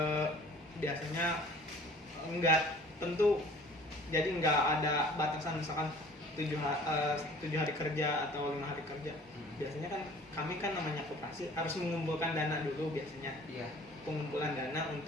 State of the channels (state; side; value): normal; both; correlation 0.50